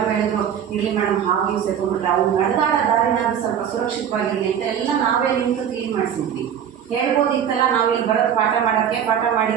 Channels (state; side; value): quieter; left; 8.8 dB